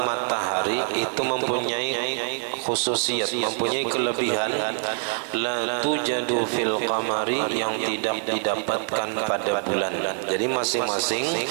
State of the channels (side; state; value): left; silent; 62 dB below the other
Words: matahari itu mempunyai khususiyat, mempunyai kelebihan la tujadu fil qamari, yang tidak didapatkan pada bulan. Jadi masing-masing